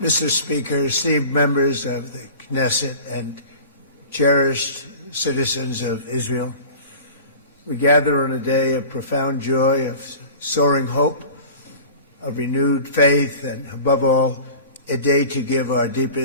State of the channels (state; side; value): inverted; both; correlation -0.40